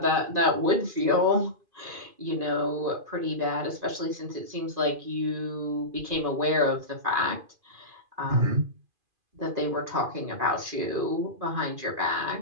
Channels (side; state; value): left; late; 2.5 ms